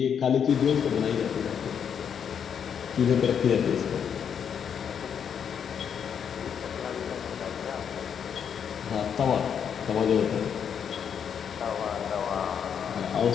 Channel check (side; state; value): right; quieter; 7.8 dB